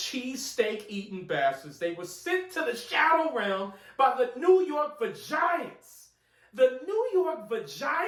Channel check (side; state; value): both; identical; correlation 1.00